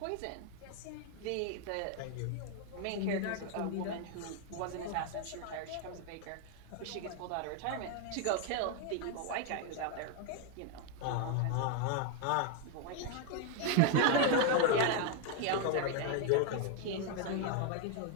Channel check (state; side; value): different; both; correlation 0.01